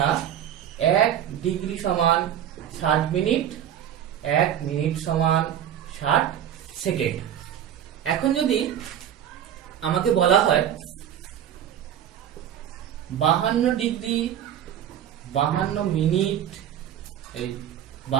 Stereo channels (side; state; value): left; quieter; 10.2 dB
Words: 1 ডিগ্রি সমান 60 মিনিট, 1 মিনিট সমান 60 সেকেন্ড। এখন যদি আমাকে বলা হয় 52 ডিগ্রি 52 মিনিট, এই